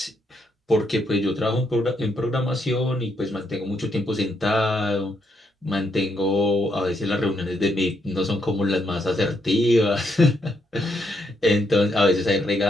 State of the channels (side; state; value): both; normal; correlation 0.77